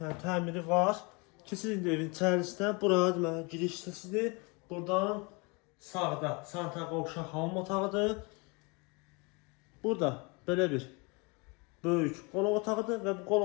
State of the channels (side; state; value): right; quieter; 29.5 dB